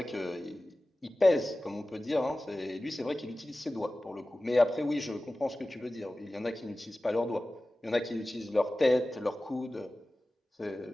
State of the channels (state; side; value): normal; both; correlation 0.96